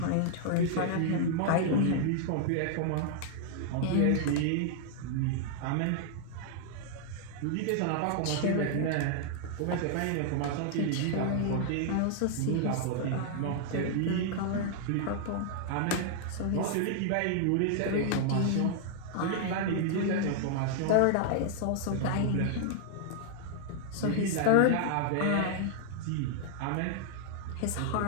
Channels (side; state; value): both; different; correlation -0.01